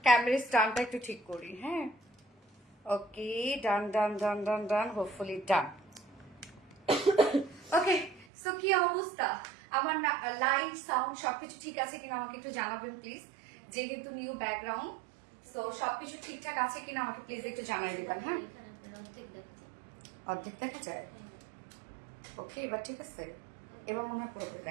ক্যামেরা স্ট্যান্ডটা একটু ঠিক করি। হ্যাঁ ওকে, ডান ডান ডান ডান ডান, হোপফুলি ডান। ওকে, সো কি অবস্থা আমার, লাইট সাউন্ড সবকিছু ঠিক আছে কিনা আমাকে একটু জানাবেন প্লিজ। যেহেতু নিউ ব্যাকগ্রাউন্ড, সো সবকিছু ঠিকঠাক আছে কিনা আমাকে প্লিজ একটু জানাই দিবেন। হ্যাঁ, অর্ধেক দেখা যায়। ওকে, এবার ঠিক আছে, এবার মনে হয় পুরোপুরি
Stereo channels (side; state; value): left; drops out; at 8.2 s